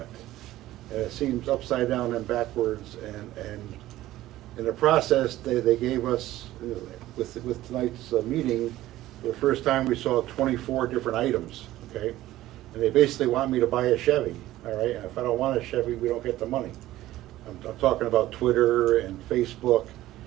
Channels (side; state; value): left; quieter; 15.3 dB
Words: And it seems upside down and backwards, and in the process, they gave us, with tonight's meeting, for the first time we saw 24 different items, okay? And they basically want me to buy a Chevy, all right? And if I don't want a Chevy, we don't get the money. I'm talking about Twitter and Facebook,